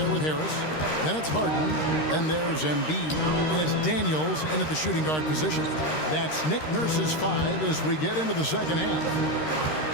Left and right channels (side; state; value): right; late; 13 ms